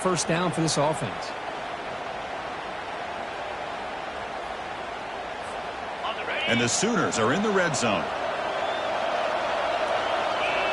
down for this offense. And the Sooners are in the red zone.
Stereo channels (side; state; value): both; identical; correlation 1.00